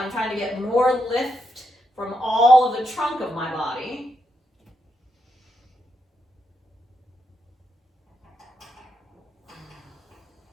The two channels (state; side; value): normal; both; correlation 0.82